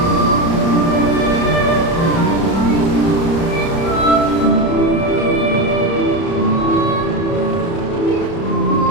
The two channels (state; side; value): late; right; 30 ms